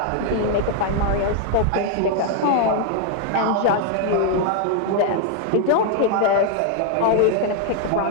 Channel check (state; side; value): different; both; correlation 0.00